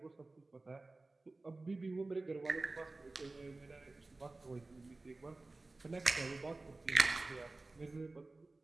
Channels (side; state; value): left; quieter; 3.2 dB